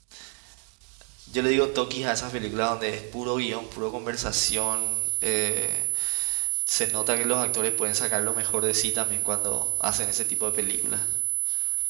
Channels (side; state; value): left; quieter; 36.0 dB